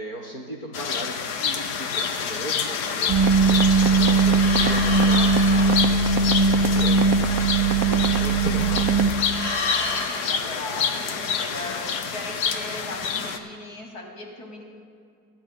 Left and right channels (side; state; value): right; late; 4.9 ms